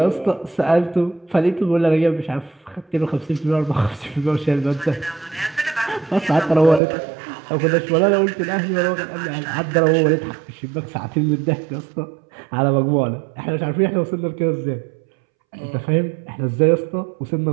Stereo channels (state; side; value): drops out; left; at 6.8 s